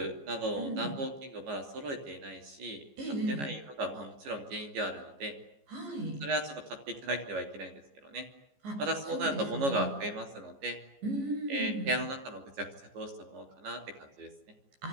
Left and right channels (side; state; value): left; late; 14 ms